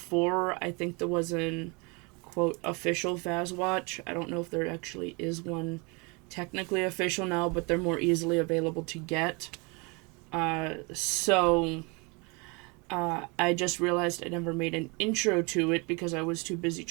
I think there was an quote official Fazwatch. I don't know if there actually is one technically official now, but they're more easily available to get. I just realized I never made an intro to it because I was too busy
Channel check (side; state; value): left; quieter; 29.9 dB